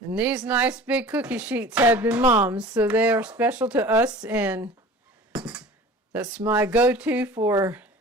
these nice big cookie sheets have been Mom's, so they are special to us, and that's my go-to for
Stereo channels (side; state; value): both; normal; correlation 0.41